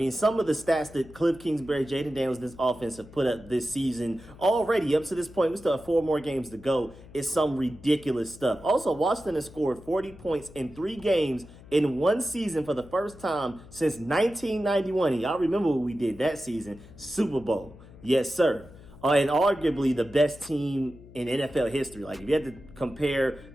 some of the stats that Cliff Kingsbury, Jayden Daniels, this offense have put up this season already up to this point, we still have 4 more games to go, is some ridiculous stuff. Also, Washington has scored 40 points in 3 games in one season for the first time since 1991. And y'all remember what we did that season? Super Bowl. Yes, sir. And arguably the best team in NFL history. Like, if you had to compare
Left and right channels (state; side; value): noise; left; hum, 20 dB below the sound